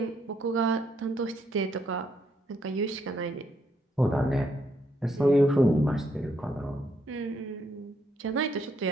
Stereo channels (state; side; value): normal; both; correlation 0.74